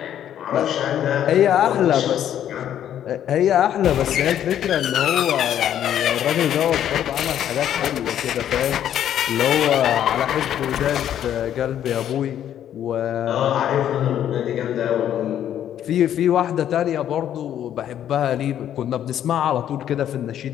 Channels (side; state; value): right; quieter; 10.5 dB